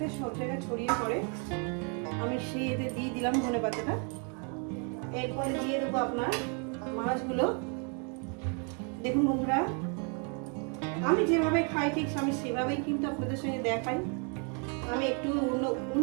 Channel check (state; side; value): quieter; left; 39.0 dB